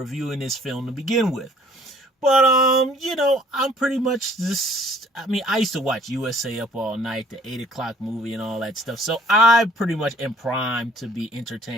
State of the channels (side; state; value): both; normal; correlation 0.57